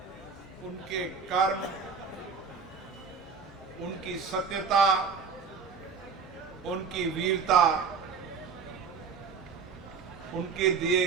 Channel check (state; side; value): quieter; left; 5.6 dB